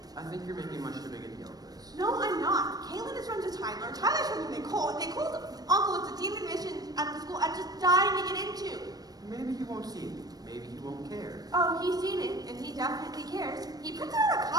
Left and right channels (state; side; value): late; left; 0.19 ms